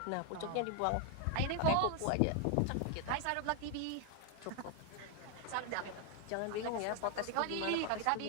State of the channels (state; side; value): different; both; correlation 0.01